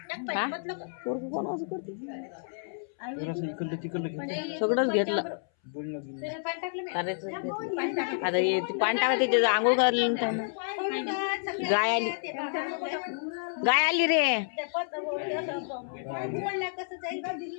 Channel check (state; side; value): silent; right; 58 dB below the other